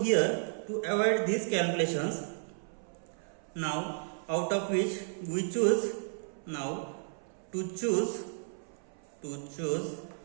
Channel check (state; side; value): silent; left; 56 dB below the other